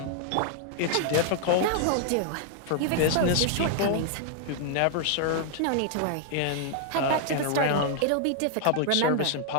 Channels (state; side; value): different; both; correlation 0.00